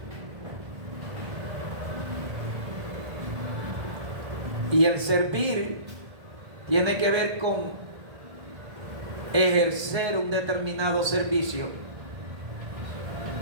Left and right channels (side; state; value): left; late; 1.7 ms